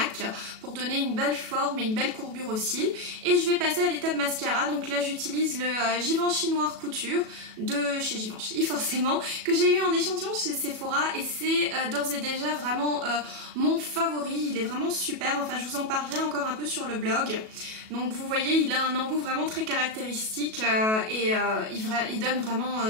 pour donner une belle forme et une belle courbure aux cils. Et je vais passer à l'étape mascara, donc là j'utilise le Givenchy Noir Couture de chez Givenchy, forcément, que j'ai eu en échantillon chez Sephora et c'est d'ores et déjà vraiment mon favori. Il est vraiment super, enfin je vous en parlerai encore un peu sur le blog. Donc vous voyez, il a un embout vraiment très caractéristique il donne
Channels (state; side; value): late; left; 37 ms